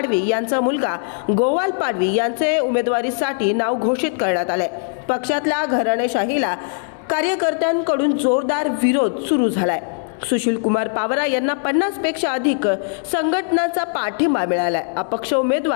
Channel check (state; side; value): silent; right; 66 dB below the other